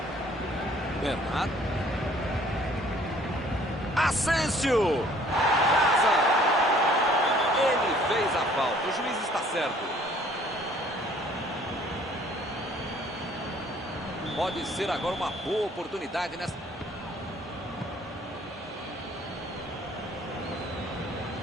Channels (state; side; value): normal; both; correlation 0.57